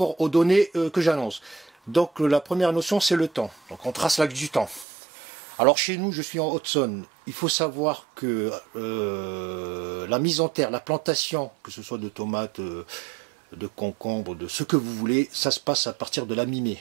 aux données que j'annonce. Donc la première notion, c'est le temps. Donc on trace l'axe du temps. Alors chez nous, je suis en Haute-Saône. Il faut savoir que la mise en terre, la plantation, que ce soit de tomates, de concombres, de ce que vous voulez, ça se passe à partir de la mi-mai.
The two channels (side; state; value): left; drops out; at 4.9 s